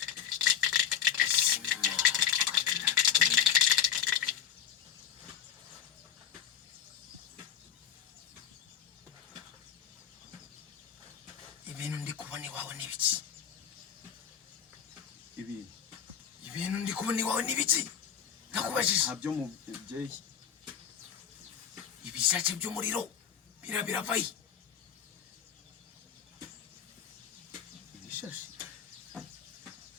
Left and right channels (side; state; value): right; quieter; 8.8 dB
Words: ibintu ndi kubona iwawe n'ibiki ibintu ndi kubona iwawe n'ibiki nakubajije ntabyo mubyeyi ibishace by'umuriro biravaye ibishashi